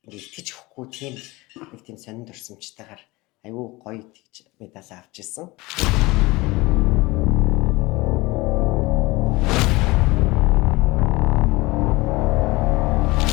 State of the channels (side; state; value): right; quieter; 21.8 dB